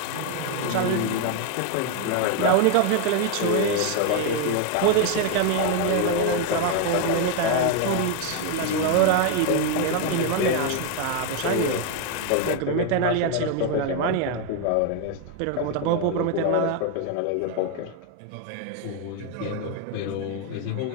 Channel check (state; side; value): different; both; correlation 0.01